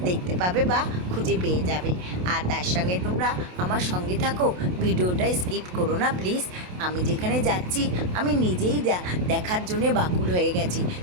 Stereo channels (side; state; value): left; late; 28 ms